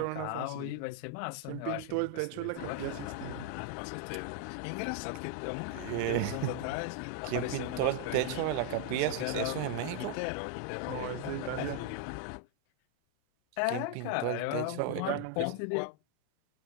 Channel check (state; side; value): different; both; correlation 0.00